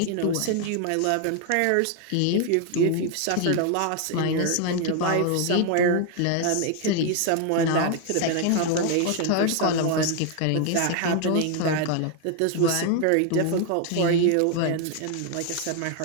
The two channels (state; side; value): different; both; correlation 0.01